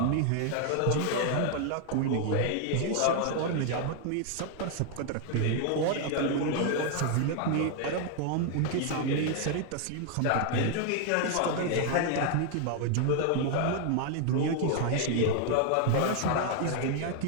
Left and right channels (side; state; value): both; different; correlation 0.00